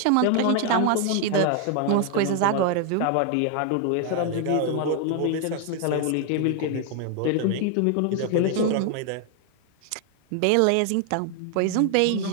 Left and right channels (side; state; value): both; different; correlation 0.00